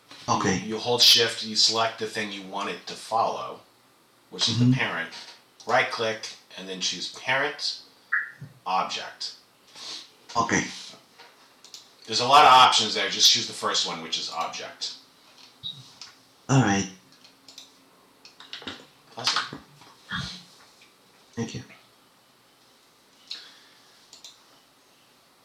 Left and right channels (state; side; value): identical; both; correlation 1.00